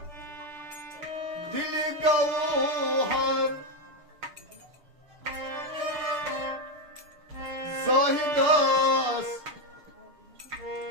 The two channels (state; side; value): late; left; 6.7 ms